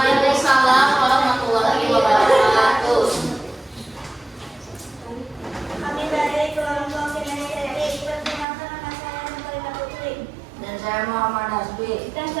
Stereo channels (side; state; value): left; drops out; at 8.5 s